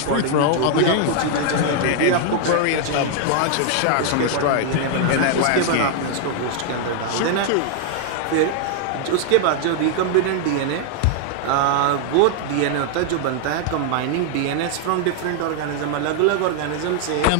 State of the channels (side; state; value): both; different; correlation 0.00